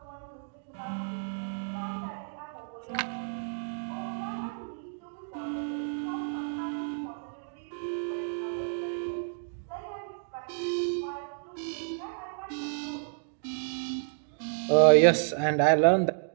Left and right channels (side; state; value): left; silent; digital silence